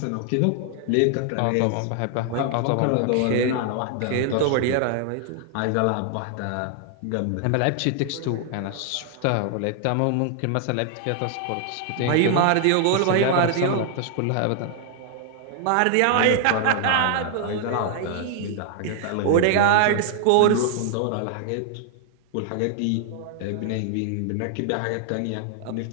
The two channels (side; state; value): both; different; correlation 0.00